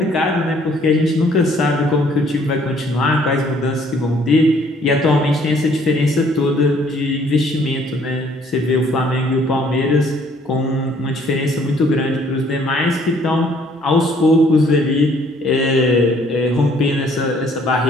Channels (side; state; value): both; normal; correlation 0.61